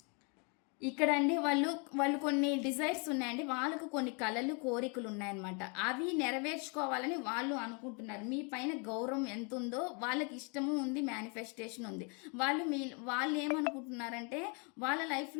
ఇక్కడ అండి వాళ్ళు కొన్ని డిజైర్స్ ఉన్నాయండి, వాళ్ళకు కొన్ని కళలు కోరికలు ఉన్నాయన్నమాట. అవి నెరవేర్చుకోవాలని వాళ్ళు అనుకుంటున్నారు. మీ పైన గౌరవం ఎంత ఉందో వాళ్ళకి ఇష్టము ఉంది, మేనిఫెస్టేషన్ ఉంది. వాళ్ళు ఏమనుకుంటున్నారంటే వాళ్ళ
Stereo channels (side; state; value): right; quieter; 34.8 dB